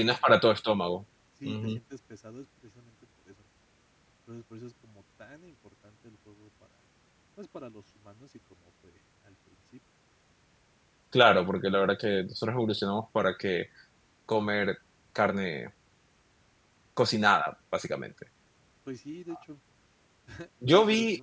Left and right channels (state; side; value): identical; both; correlation 1.00